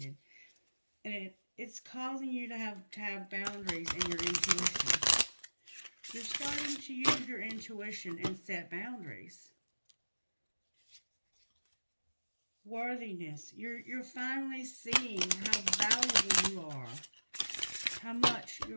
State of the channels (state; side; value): inverted; both; correlation -1.00